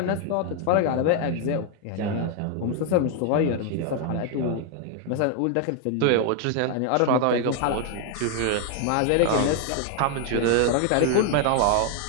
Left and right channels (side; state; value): both; different; correlation 0.00